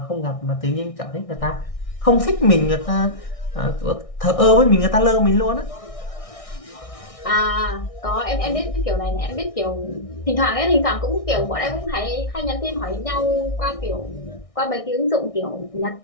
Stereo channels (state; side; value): late; right; 1.6 ms